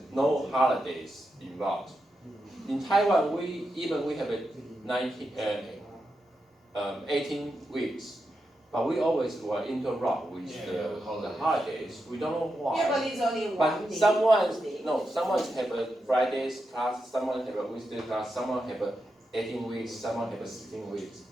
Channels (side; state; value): both; normal; correlation 0.87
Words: no holidays involved. In Taiwan, we have a 18 weeks, but we always will interrupt with the holidays. We don't know why. Yeah, but it's only one But day. someone Day. have a Fridays class, someone have a Wednesday class, someone have a 18 weeks, someone have a 16 weeks,